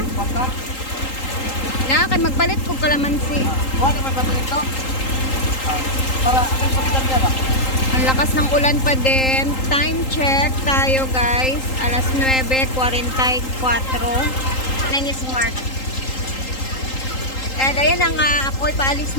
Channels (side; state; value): right; late; 3.8 ms